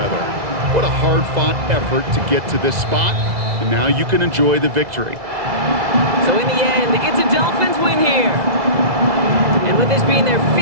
What a hard-fought effort to get to this spot, and now you can enjoy the victory. So in the end, it's a Dolphins win here. And with this being their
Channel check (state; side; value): late; left; 2.0 ms